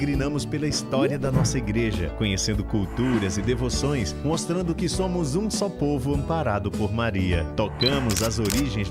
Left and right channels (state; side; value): identical; both; correlation 1.00